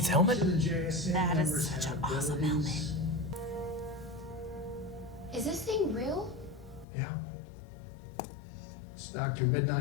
helmet? that is such an awesome helmet. Is this thing real? Yeah. It's Dr.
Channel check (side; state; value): right; drops out; at 6.9 s